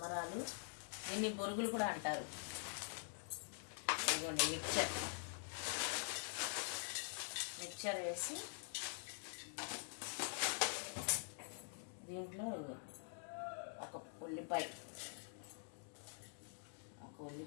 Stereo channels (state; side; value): silent; right; digital silence